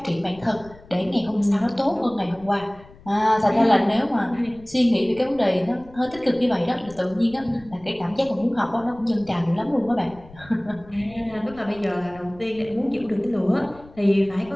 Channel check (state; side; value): noise; left; rumble, 22 dB below the sound